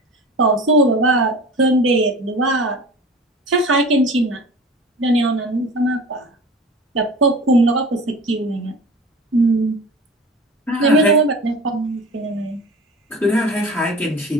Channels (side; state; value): both; normal; correlation 0.38